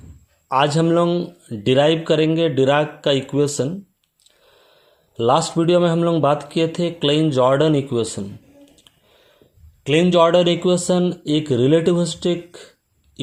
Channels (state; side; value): identical; both; correlation 1.00